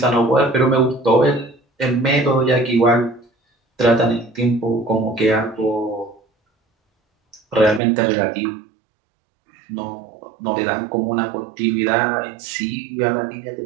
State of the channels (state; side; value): drops out; left; at 7.8 s